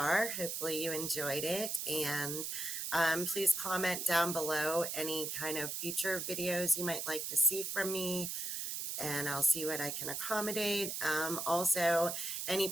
hopefully you enjoyed it. And please comment down below any kind of future videos you might like to see from me, and I'll see what I can accommodate. Also, any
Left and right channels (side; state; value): right; noise; hiss, 3 dB below the sound